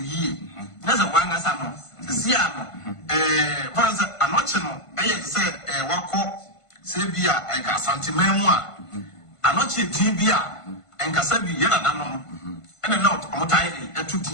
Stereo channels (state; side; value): late; right; 1.5 ms